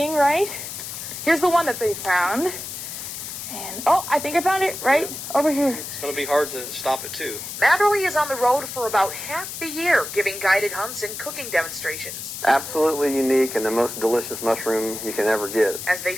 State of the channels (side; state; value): left; noise; hiss, 8 dB below the sound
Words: right? Here's the one that they found. And, oh, I think I found it right over here. It's going to be hard to stop it, too. Matherly is on the road for about half the year, giving guided hunts and cooking demonstrations. Absolutely unique and the most delicious mushroom you can ever get. As they